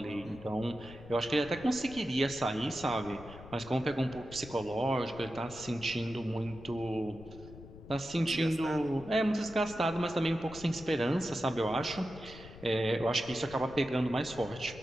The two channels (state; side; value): noise; left; rumble, 16 dB below the sound